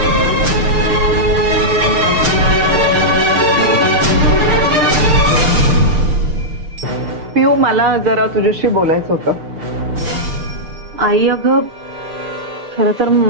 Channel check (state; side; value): late; left; 6.6 ms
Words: पिऊ, मला जरा तुझ्याशी बोलायचं होतं। आई अगं, खरं तर